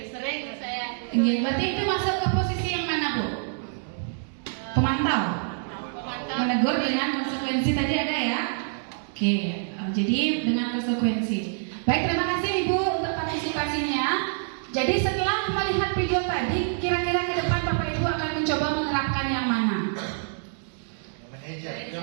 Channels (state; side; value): silent; left; digital silence